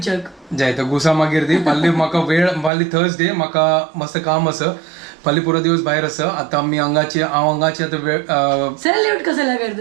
जाय तर गुसा मागीर दी फाल्यां म्हाका वेळ फाल्यां थर्सडे म्हाका मस्त काम आसा फाल्यां पुरो दिवस भायर आसा आतां हांव हांगाची आतां वेळ सैल्यूट कसला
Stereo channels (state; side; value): drops out; left; at 2.7 s